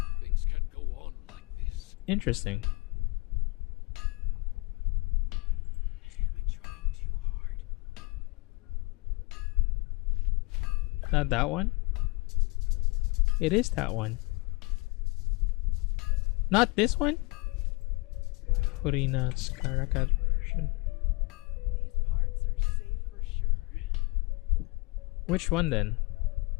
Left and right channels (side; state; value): right; quieter; 25.9 dB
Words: Things can go on like this. Interesting. Not that one? It is that one. Not this one? Farina Skarakat version. Which one then?